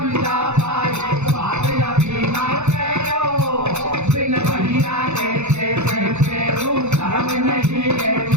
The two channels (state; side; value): late; left; 0.82 ms